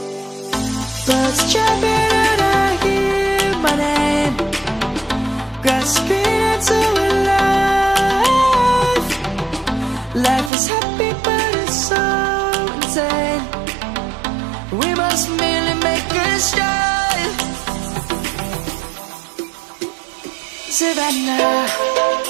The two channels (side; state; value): left; drops out; at 10.5 s